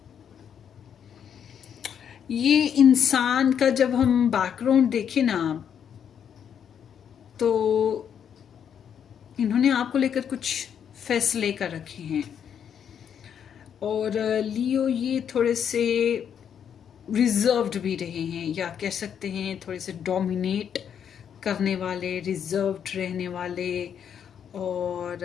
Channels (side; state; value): right; quieter; 8.3 dB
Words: ये इंसान का जब हम background देखें ना, तो इन्होंने आपको लेकर कुछ फैसले कर रखे हैं। और लियो ये थोड़े से रिजर्व्ड भी रहे हैं, या कह सकते हैं थोड़े से डोमिनेट करने वाले, रिजर्व्ड रहने वाले, और